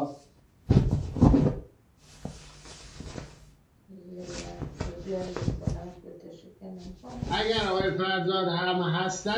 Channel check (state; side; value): identical; both; correlation 1.00